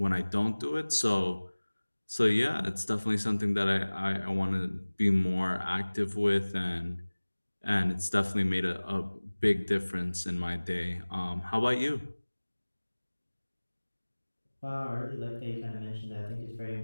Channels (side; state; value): both; inverted; correlation -1.00